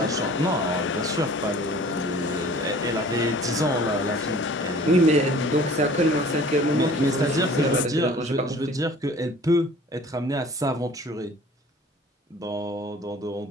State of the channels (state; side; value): normal; both; correlation 0.48